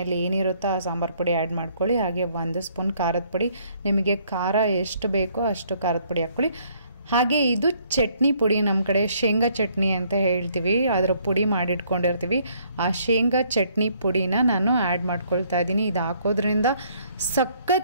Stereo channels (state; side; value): inverted; both; correlation -0.65